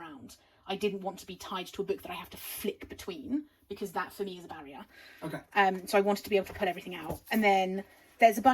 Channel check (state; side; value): identical; both; correlation 1.00